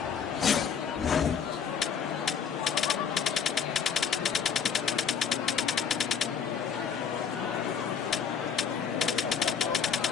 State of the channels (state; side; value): quieter; right; 7.1 dB